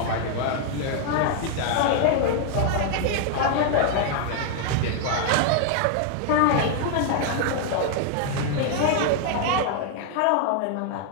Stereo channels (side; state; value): both; different; correlation 0.00